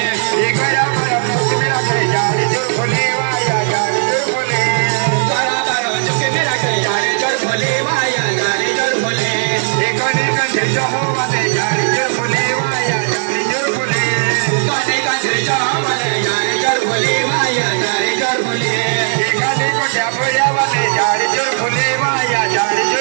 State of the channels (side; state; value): left; silent; digital silence